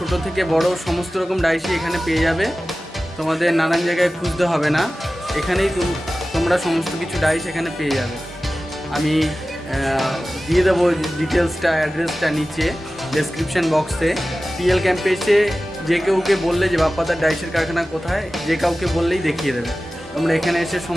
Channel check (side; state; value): both; normal; correlation 0.96